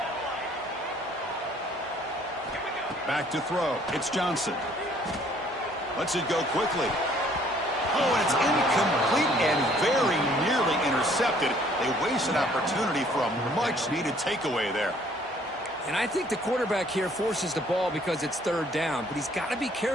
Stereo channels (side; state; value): both; normal; correlation 0.60